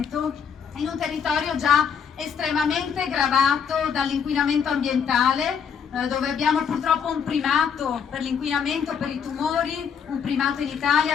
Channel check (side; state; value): right; quieter; 7.1 dB